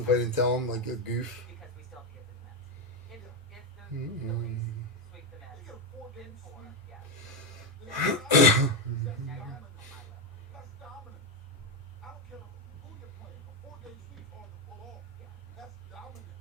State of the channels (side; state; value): both; normal; correlation 0.06